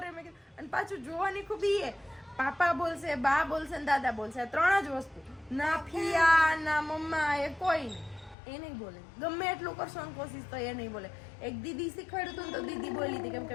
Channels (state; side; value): drops out; right; at 8.3 s